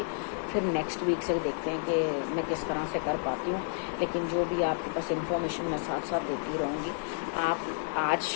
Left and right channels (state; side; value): silent; right; digital silence